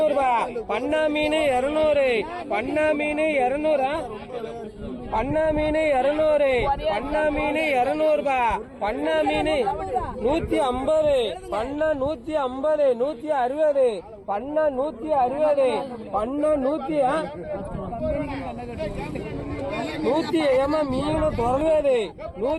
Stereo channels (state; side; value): identical; both; correlation 1.00